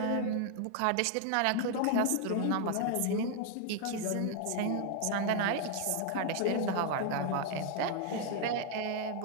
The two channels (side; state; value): both; different; correlation 0.00